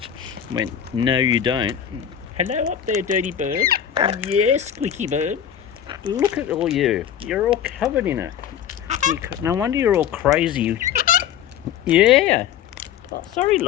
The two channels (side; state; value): right; quieter; 9.4 dB